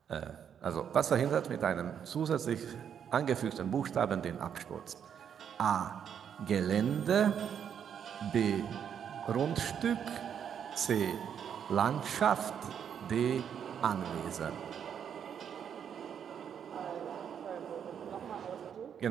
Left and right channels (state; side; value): quieter; left; 8.3 dB